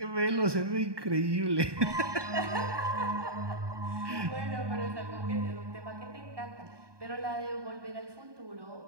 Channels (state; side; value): late; left; 1.2 ms